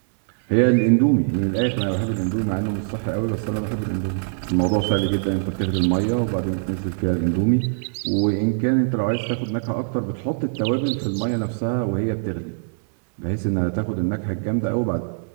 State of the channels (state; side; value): silent; left; 64 dB below the other